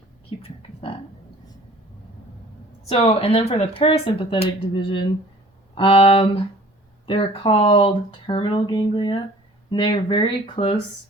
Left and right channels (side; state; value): both; normal; correlation 0.49